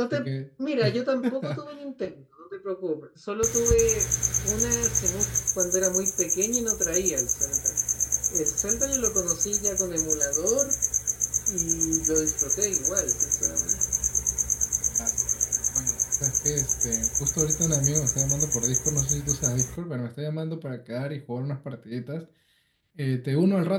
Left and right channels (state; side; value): identical; both; correlation 1.00